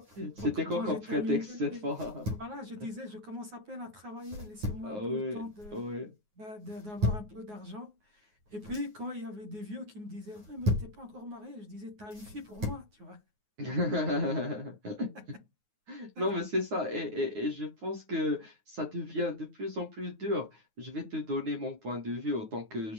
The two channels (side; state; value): left; late; 9.5 ms